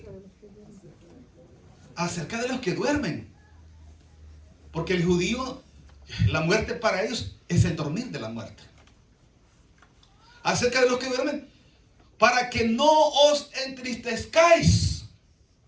acerca de los que duermen. Porque el judío, la muerte para ellos es el dormir de la muerte. Acerca de los que duermen, para que no os entristezcáis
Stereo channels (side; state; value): both; identical; correlation 1.00